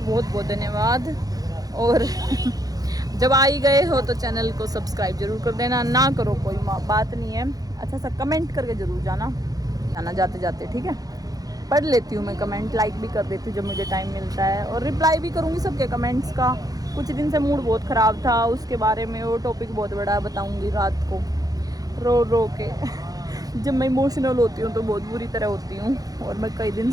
बहुत बहुत धन्यवाद। और जब आ ही गए हो तो चैनल को सब्सक्राइब जरूर कर देना, ना करो कोई बात नहीं है, अच्छा सा कमेंट करके ज़रूर जाना जाते जाते, ठीक है। पढ़ लेती हूँ मैं कमेंट, लाइक भी कर देती हूँ जब मुझे टाइम मिलता है, और रिप्लाई भी करूँगी सबके कमेंट्स का। कुछ दिन से मूड बहुत ख़राब था, उसके बारे में वो टॉपिक बहुत बड़ा बताऊँगी रात को रो के। जब मैं इमोशनल होती हूँ तो बहुत बुरी तरह होती हूँ, और मैं कई दिन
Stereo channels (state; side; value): late; left; 0.18 ms